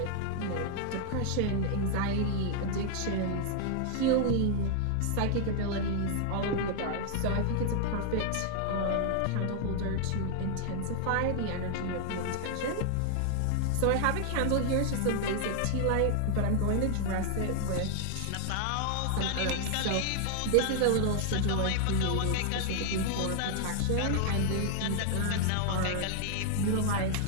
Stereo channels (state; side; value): different; both; correlation 0.00